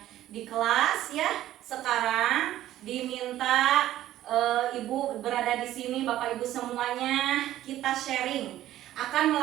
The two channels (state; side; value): quieter; left; 13.5 dB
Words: di kelas ya. Sekarang diminta Ibu berada di sini, Bapak Ibu semuanya, kita sharing akan